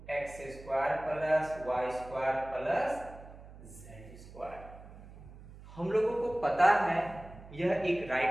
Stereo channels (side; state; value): right; noise; hum, 17 dB below the sound